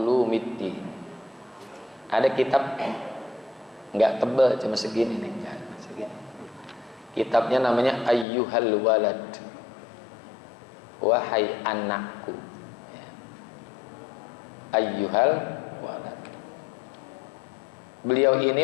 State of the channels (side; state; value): right; drops out; at 8.2 s